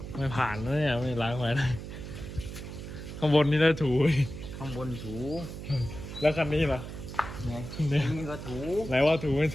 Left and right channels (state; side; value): noise; right; hum, 9 dB below the sound